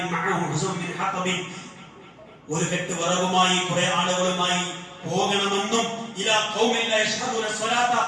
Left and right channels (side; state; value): both; identical; correlation 1.00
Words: ഒരു കെട്ട് വിറകുമായി കുറെ ആളുകളുമായി പോകണമെന്നും